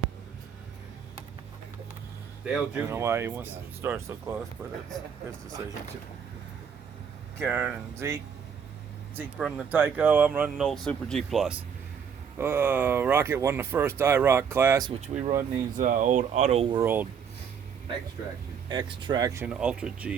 Dale I don't know Jr. why he wants to start so close, but it's his decision. Karen and Zeke. Zeke running the Tyco. I'm running the old Super G Plus. Rocket won the first IROC class, which we run these old Auto World Extraction. X-Traction Ultra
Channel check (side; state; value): left; quieter; 7.1 dB